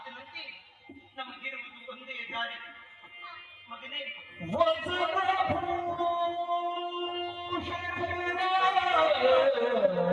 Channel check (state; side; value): identical; both; correlation 1.00